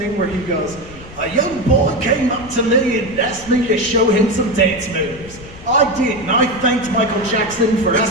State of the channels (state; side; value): noise; left; rumble, 17 dB below the sound